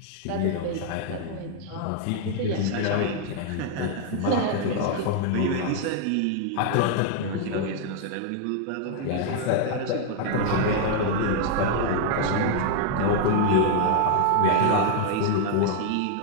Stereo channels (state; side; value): different; both; correlation 0.00